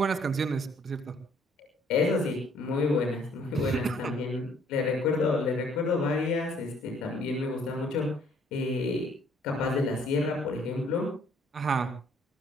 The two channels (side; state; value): both; normal; correlation 0.62